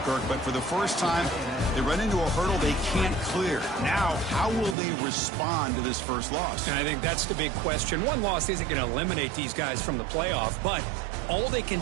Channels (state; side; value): drops out; left; at 4.8 s